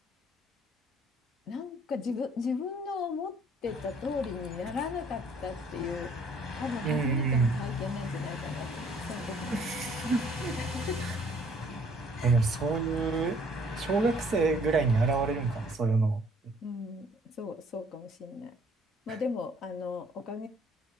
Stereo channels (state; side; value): normal; both; correlation 0.60